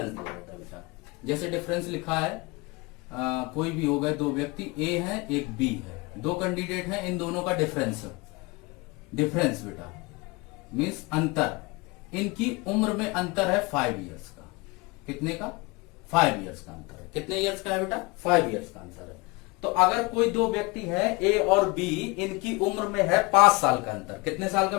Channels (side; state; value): right; quieter; 25.7 dB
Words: दिया जाता है बेटा। जैसे डिफरेंस लिखा है, कोई भी हो गए दो व्यक्ति, ए है एक बी है, दो कैंडिडेट हैं, इन दोनों का डिफरेंस बेटा मीन्स अंतर, इनकी उम्र में अंतर है 5 इयर्स का। कितने का, 5 इयर्स का अंतर है। कितने इयर्स का है बेटा, 5 इयर्स का अंतर है। तो अगर कोई दो व्यक्ति है ए और बी, इनकी उम्र में है 5 साल का अंतर। कितने साल